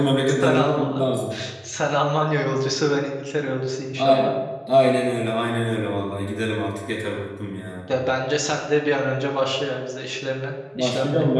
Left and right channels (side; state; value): both; identical; correlation 1.00